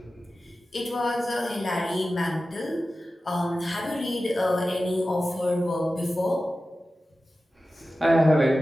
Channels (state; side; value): normal; both; correlation 0.94